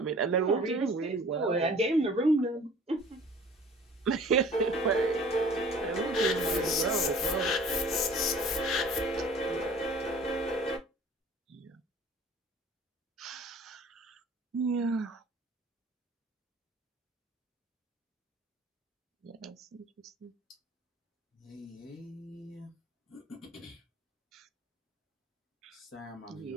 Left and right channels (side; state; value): both; normal; correlation 0.48